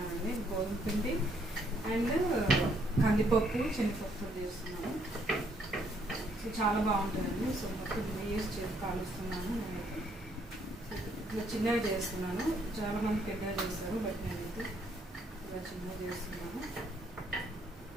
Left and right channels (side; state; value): both; normal; correlation 0.69